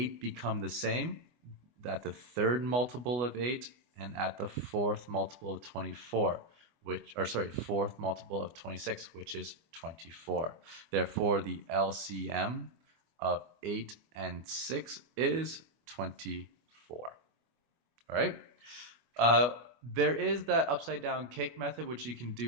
become the same? At the third multiple of 8 and at the fourth multiple of 24. Fourth multiple of 26, which is 24. Therefore, the LCM of 8 and 6 is 24. All right? There is that upside down cake method, which you can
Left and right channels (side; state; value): left; late; 25 ms